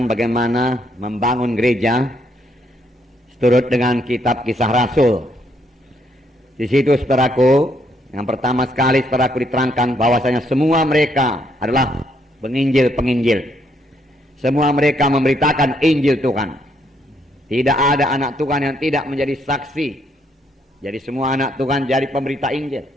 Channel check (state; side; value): normal; both; correlation 0.72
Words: bagaimana membangun gereja seturut dengan kitab Kisah Rasul. Di situ, saudaraku, yang pertama sekali saudaraku diterangkan bahwasanya semua mereka adalah penginjil-penginjil. Semua mereka memberitakan Injil Tuhan. Tidak ada anak Tuhan yang tidak menjadi saksi. Jadi semua anak Tuhan jadi pemberita Injil.